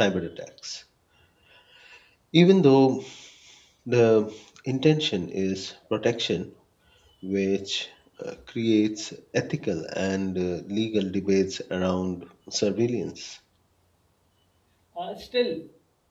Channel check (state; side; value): identical; both; correlation 1.00